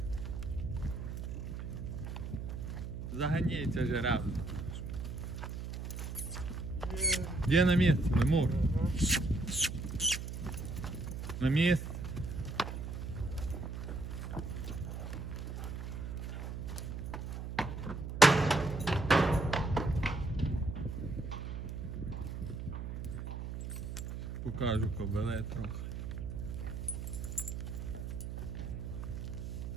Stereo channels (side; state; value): right; noise; hum, 6 dB below the sound